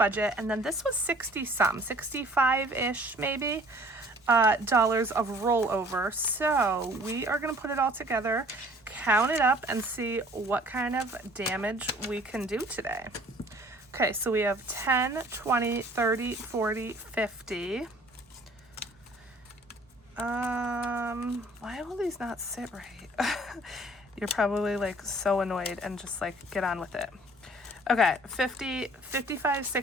and then this was 60 some, 65-ish maybe, dollars of rollover. So we are gonna put it all together, count it up, and see what kind of damage we can do today. Okay, so we have 10, 20, 30, 40, 50. Why will these not sit right? You're probably like so annoyed and just like get on with it. Okay, 50, 55,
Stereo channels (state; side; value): normal; both; correlation 0.53